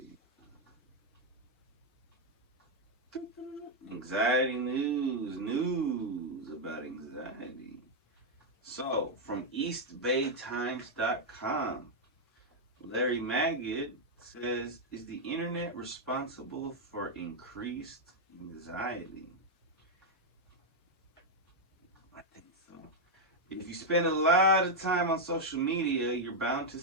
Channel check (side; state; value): both; normal; correlation -0.01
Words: Anxiety news about anxiety. So, from EastBayTimes.com, Larry Magid says, is the internet responsible for increased anxiety? I think so. If you spend a lot of time on social media, you're bound to